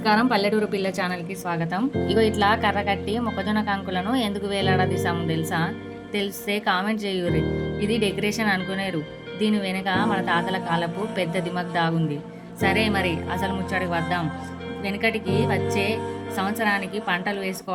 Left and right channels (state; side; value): identical; both; correlation 1.00